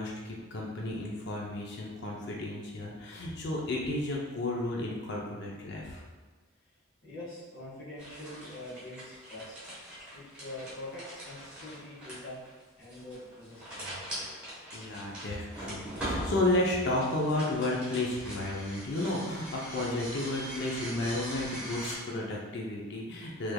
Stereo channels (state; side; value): normal; both; correlation 0.32